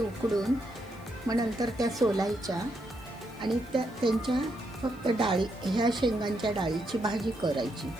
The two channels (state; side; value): noise; left; hiss, 27 dB below the sound